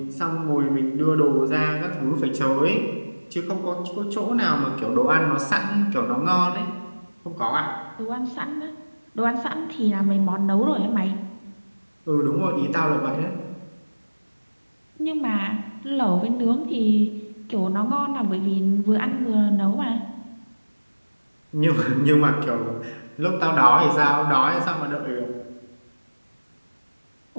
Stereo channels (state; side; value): inverted; both; correlation -1.00